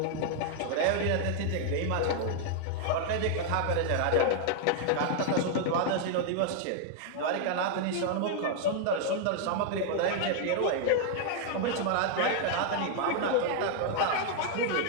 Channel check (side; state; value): both; different; correlation 0.00